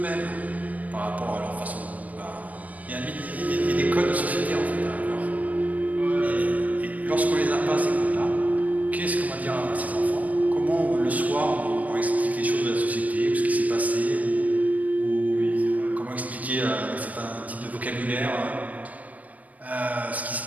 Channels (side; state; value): left; late; 0.072 ms